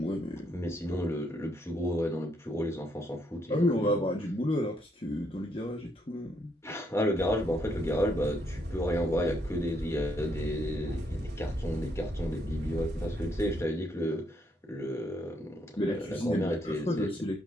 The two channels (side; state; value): both; normal; correlation 0.74